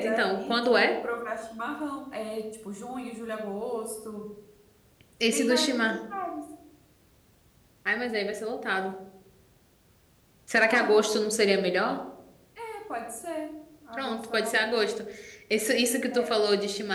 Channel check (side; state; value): both; identical; correlation 1.00